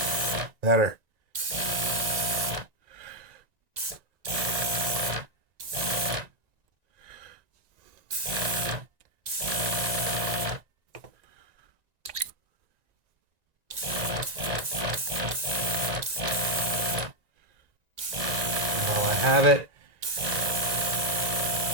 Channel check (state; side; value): late; left; 1.9 ms